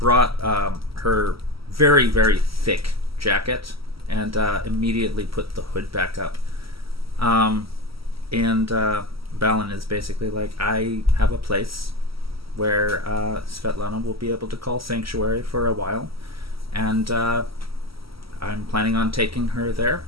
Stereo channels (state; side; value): late; left; 0.75 ms